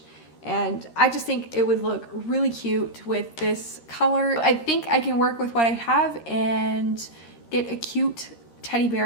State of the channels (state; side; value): late; right; 13 ms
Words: And I just think it would look really cute with this color. I think I can work with what I have and get a cute teddy